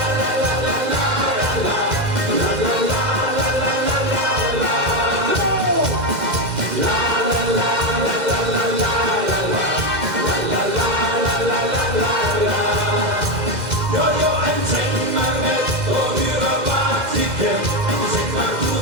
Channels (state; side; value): late; left; 2.0 ms